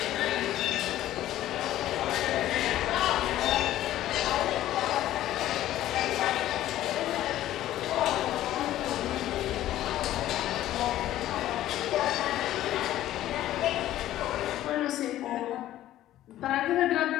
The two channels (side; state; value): right; quieter; 13.6 dB